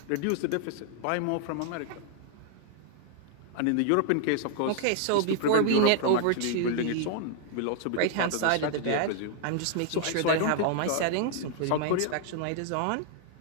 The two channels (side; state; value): both; different; correlation -0.01